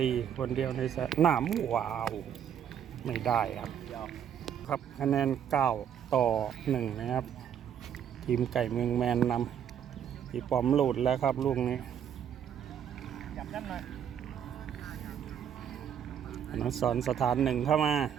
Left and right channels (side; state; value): left; quieter; 8.9 dB